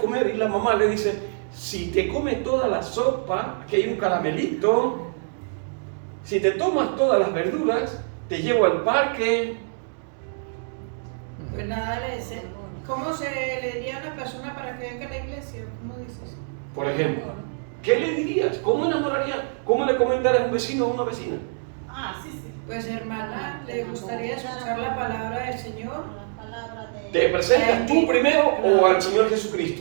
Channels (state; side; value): silent; left; digital silence